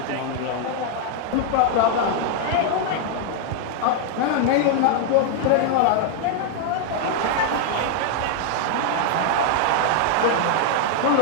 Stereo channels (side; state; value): both; different; correlation 0.00